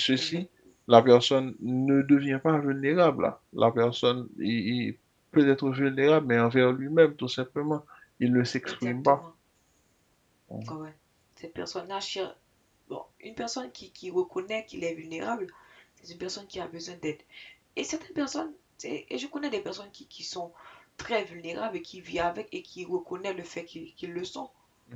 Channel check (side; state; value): both; identical; correlation 1.00